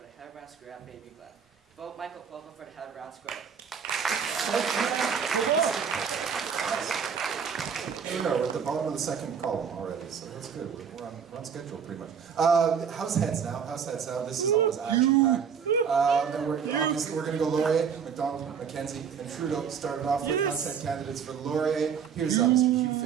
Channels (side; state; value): left; quieter; 7.0 dB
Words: the head of Brown Square at Baby Glen. Vote Michael Popa for the head of Brown Square. Here we go, we're at the bottom of the second column already, so that's good. We're on schedule pretty much. House heads now. This is always action-packed. And we're going to go Laurier, McDonald, Mackenzie, and Trudeau started off with house head candidates for Laurier. Here's Mr. Hugh